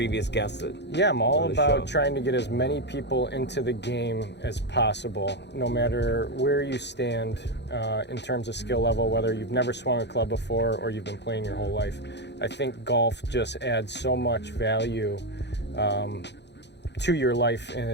guests. Yeah, I'm all about trying to get as many people into the game as possible, no matter where you stand in terms of skill level, whether you've never swung a club before or you've been playing your whole life. I think golf just adds so much value to your life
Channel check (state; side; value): late; right; 0.50 ms